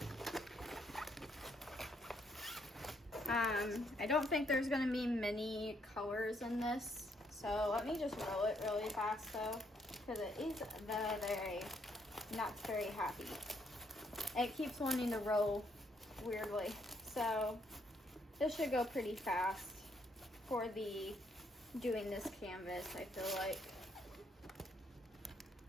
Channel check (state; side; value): normal; both; correlation 0.72